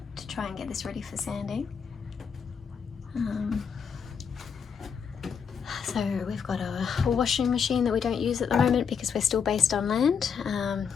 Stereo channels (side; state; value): right; quieter; 6.7 dB